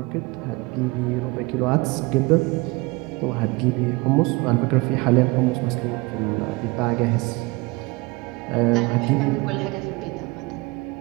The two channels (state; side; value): quieter; left; 24.7 dB